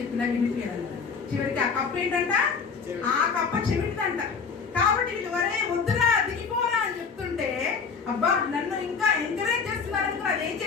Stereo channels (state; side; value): quieter; right; 5.6 dB